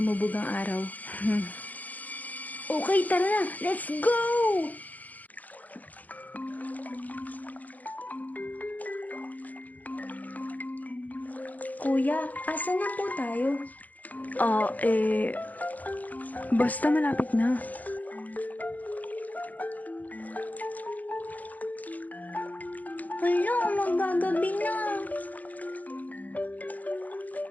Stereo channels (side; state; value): right; late; 0.080 ms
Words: ang araw. Okay, tara na. Let's go! Kuya, asa na po tayo? Basta malapit na. Hala, magagabi na.